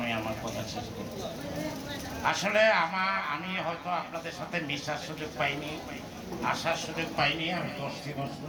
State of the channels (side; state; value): both; identical; correlation 1.00